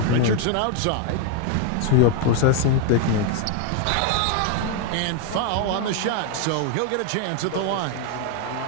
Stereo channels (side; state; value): both; different; correlation 0.01